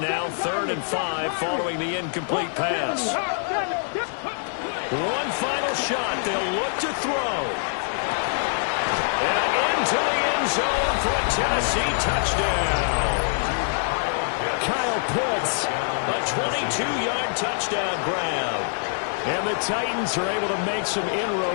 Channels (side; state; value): right; silent; 58 dB below the other